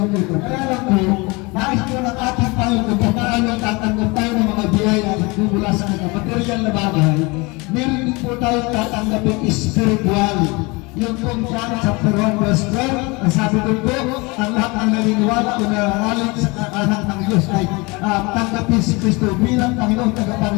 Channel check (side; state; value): right; quieter; 26.3 dB